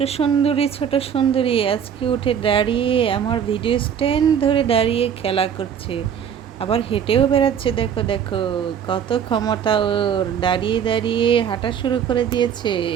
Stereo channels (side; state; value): left; quieter; 8.2 dB